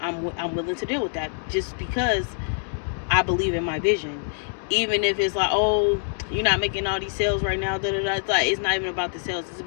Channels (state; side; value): silent; right; digital silence